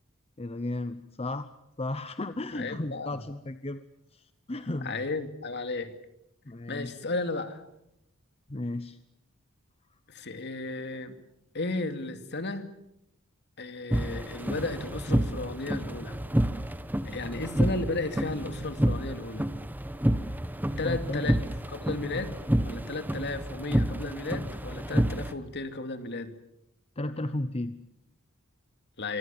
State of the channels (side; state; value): both; normal; correlation 0.70